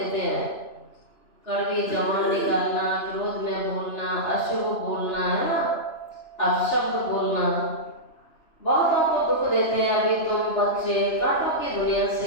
हैं। कड़वी जबान निकालना, क्रोध में बोलना, अशुभ बोलना, है ना, अपशब्द बोलना, बहुतों को दुख देते हैं। अभी तुम बच्चे कांटों की दुनिया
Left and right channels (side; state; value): right; late; 2.9 ms